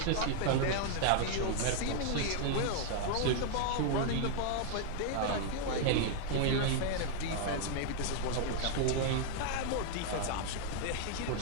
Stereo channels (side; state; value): both; different; correlation 0.00